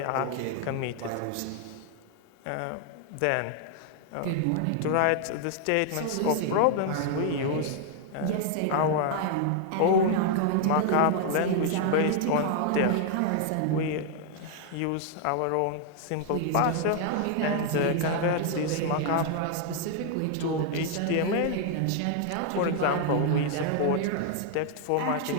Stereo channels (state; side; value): different; both; correlation 0.00